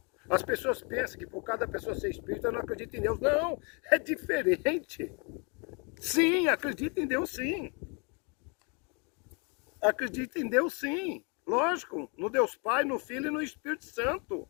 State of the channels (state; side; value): quieter; right; 33.9 dB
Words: As pessoas pensam que por cada pessoa ser espírita não acredita em Deus. Não, é diferente. Sim, acredita em Deus sim. Acredita em Deus sim. Lógico, no Deus Pai, no Filho e no Espírito Santo.